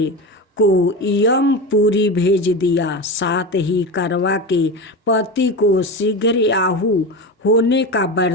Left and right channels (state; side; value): normal; both; correlation 0.23